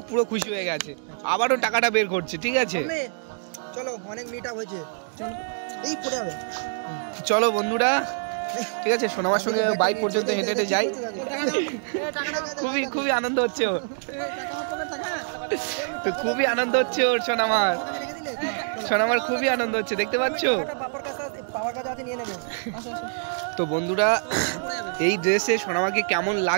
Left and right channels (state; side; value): silent; left; digital silence